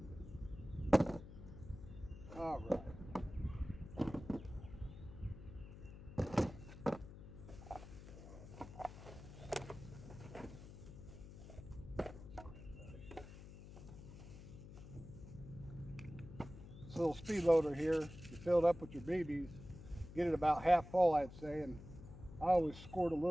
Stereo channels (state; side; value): noise; left; hum, 14 dB below the sound